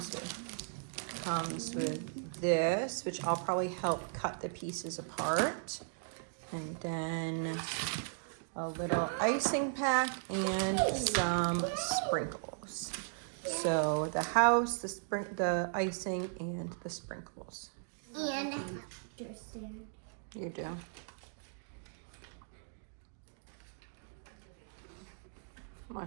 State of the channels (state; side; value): silent; left; digital silence